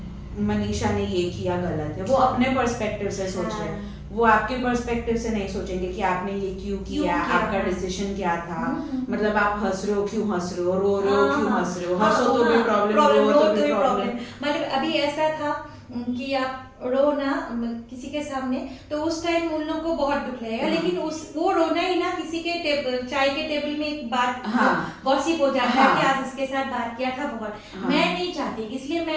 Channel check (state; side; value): identical; both; correlation 1.00